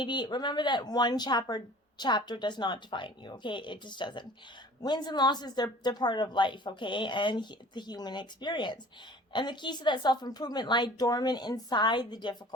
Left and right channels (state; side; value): normal; both; correlation 0.46